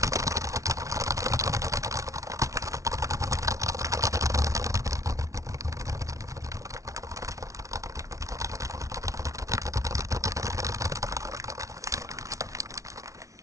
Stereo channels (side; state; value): left; late; 0.15 ms